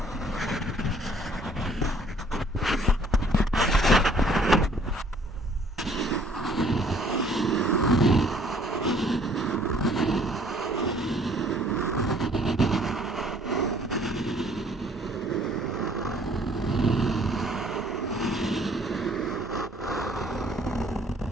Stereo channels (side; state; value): both; normal; correlation 0.58